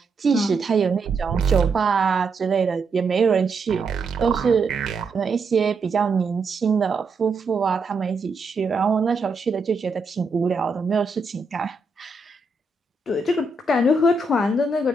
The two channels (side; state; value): left; quieter; 3.5 dB